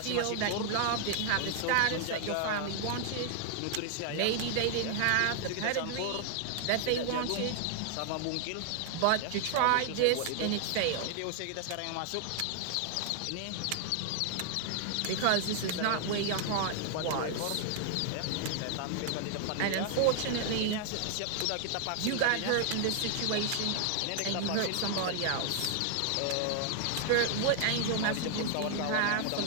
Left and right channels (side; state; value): both; different; correlation 0.00